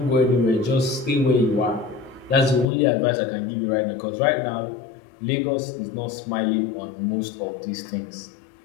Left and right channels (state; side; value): drops out; right; at 2.7 s